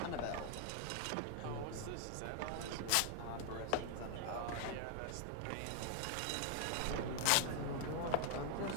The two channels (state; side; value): different; both; correlation 0.00